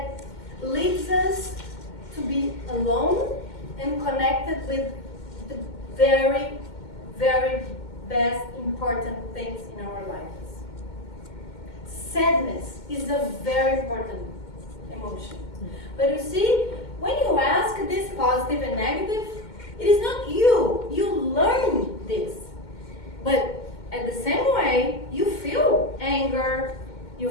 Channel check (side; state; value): right; late; 2.1 ms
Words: leads us to be alone and connected with the very, very best important things in our lives. Sadness is a very important emotion. But you see, when you ask this positive and negative, it is not you. You learn this. But at the same way, you feel anger, you